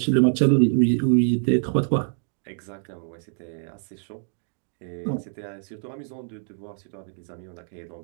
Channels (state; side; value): silent; left; digital silence